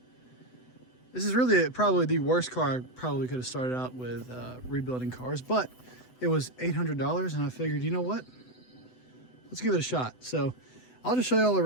is really probably the worst car I probably could have started out with rebuilding cars, but it was $800 and I figured, you know what? Let's give it a shot. So I'll just show you all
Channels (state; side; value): late; right; 7.9 ms